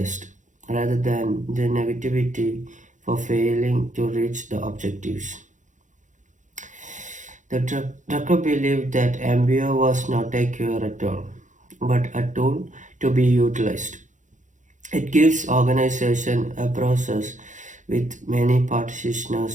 rather than the negativity for failing to reach the objectives. The Drucker believed that MBO was not a cure at all, but a tool to be utilized. It gives organization a process with many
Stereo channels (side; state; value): left; late; 0.36 ms